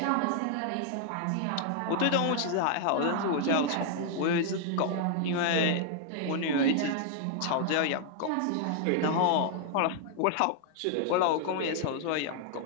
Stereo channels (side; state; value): both; different; correlation 0.00